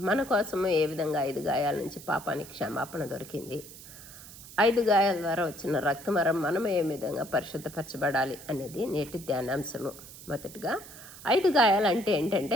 మన కోసము ఏ విధంగా 5 గాయాల నుంచి పాపానికి క్షమాపణ దొరికింది, 5 గాయాల ద్వారా వచ్చిన రక్తమరం మనం ఏ విధంగా పరిశుద్ధపరచబడాలి అనేది నేటి ధ్యానాంశము. మొదటిగా 5 గాయాలు అంటే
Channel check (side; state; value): right; noise; hiss, 16 dB below the sound